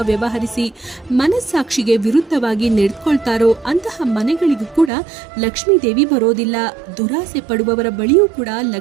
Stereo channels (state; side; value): drops out; left; at 4.9 s